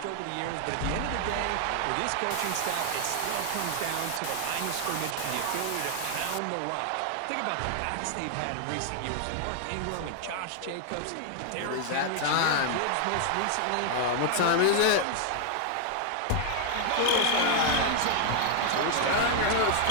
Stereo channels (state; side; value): different; both; correlation 0.00